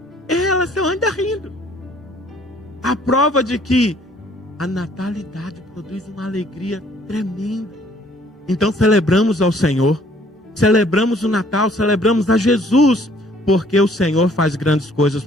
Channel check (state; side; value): normal; both; correlation 0.60